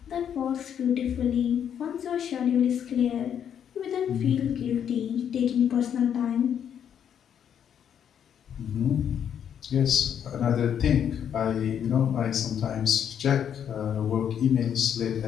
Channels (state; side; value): quieter; right; 8.8 dB